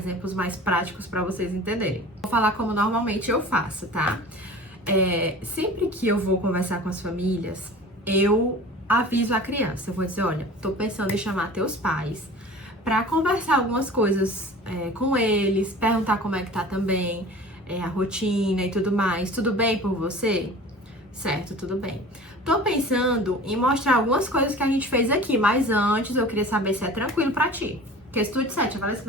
mais práticos para vocês entenderem. Vou falar como normalmente eu faço, tá? Sempre que eu vou conversar com as famílias, eu aviso a criança. Eu vou dizer, olha, tô pensando em chamar teus pais para conversar algumas coisas com eles, perguntar como é que tá também, a rotina e tudo mais. Tudo bem por você? Certo, tudo bem. Tô pensando em mostrar algumas coisas que a gente fez aqui, mas antes eu queria saber se é tranquilo pra ti. Porque se tu disser, eu falei assim,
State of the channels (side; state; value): both; normal; correlation 0.41